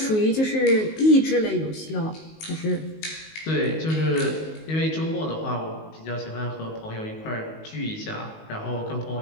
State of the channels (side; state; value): right; late; 19 ms